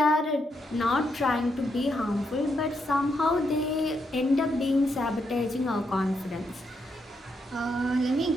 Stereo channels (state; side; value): normal; both; correlation 0.80